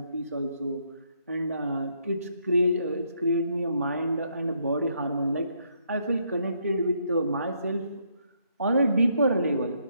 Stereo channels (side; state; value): both; inverted; correlation -0.73